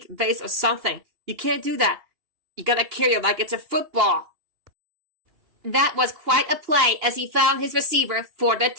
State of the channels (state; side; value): late; left; 2.9 ms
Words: vase or something. You can't do that. You gotta carry it like it's a football. That was quite a play as he found his receiver for the